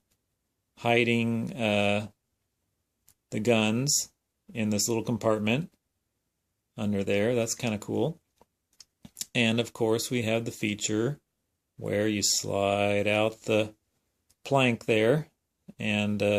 hiding the guns in this little compartment under there. That's kind of cool. And of course, we have the feature where you slide out the plank there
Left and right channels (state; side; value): identical; both; correlation 1.00